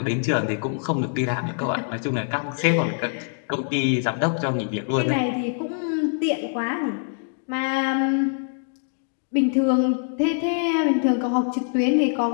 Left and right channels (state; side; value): silent; right; digital silence